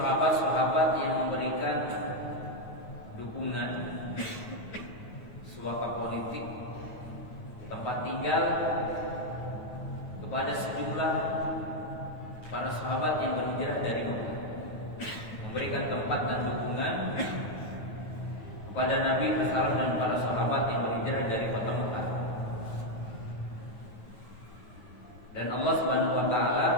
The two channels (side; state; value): right; late; 9.3 ms